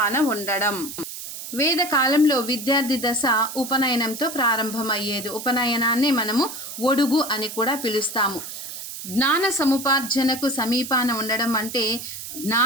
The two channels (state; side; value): noise; right; hiss, 10 dB below the sound